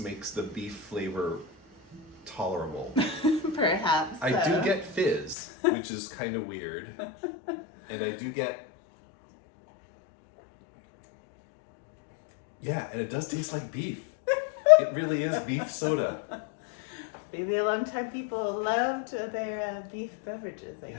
makes the beef flavor tolerable. Perhaps. I do get fizz, which is kind of weird. And I do get, yeah, and it does taste like beef. It really is beef soda. Maybe a long time people loved their beef beverages, I guess.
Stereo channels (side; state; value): right; drops out; at 5.4 s